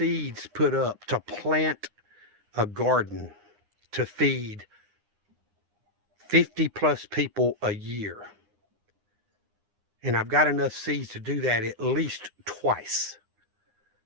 put up to plant a garden to feed 50 plus people a year. And I've got enough seeds to do that at least twice.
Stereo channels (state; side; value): late; left; 9.7 ms